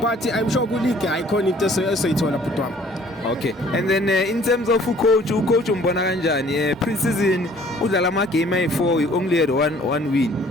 but I'm sure ku league icon into esoyithola butwami. Okay, and then in terms of coach umbona kanjani? Pre-season udlala ama game ayi4, we only had one win,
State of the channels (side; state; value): both; normal; correlation 0.56